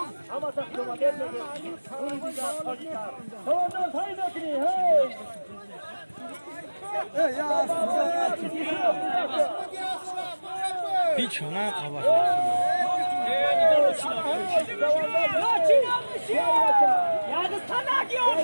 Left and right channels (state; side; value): inverted; both; correlation -1.00